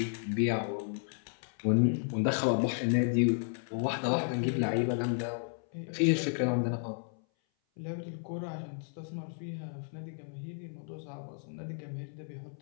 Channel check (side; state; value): right; silent; 56 dB below the other